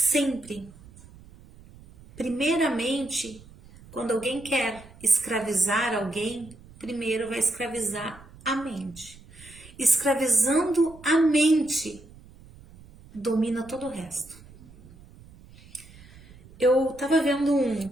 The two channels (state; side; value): noise; right; rumble, 22 dB below the sound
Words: primeiramente, quando alguém quer escravizar alguém, primeiro vai escravizar a mente. Escravizando a mente, domina todo o resto. Eu tava vendo